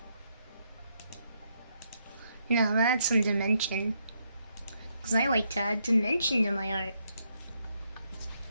No, I'm gonna add some dimension. Because I like to add dimension to my art.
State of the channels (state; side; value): inverted; both; correlation -0.77